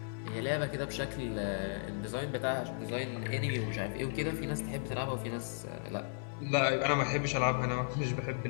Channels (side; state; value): right; silent; 54 dB below the other